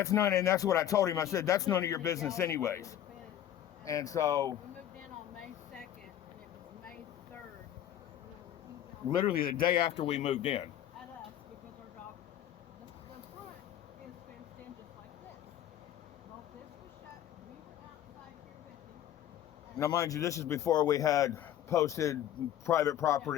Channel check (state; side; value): quieter; right; 11.3 dB